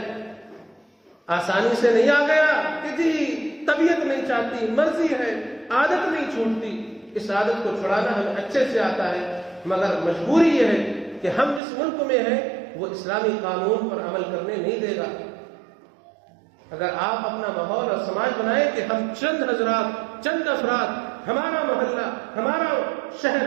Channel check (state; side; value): drops out; left; at 11.6 s